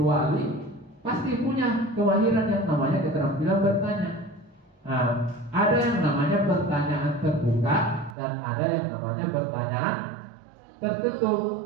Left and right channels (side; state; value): left; drops out; at 8.2 s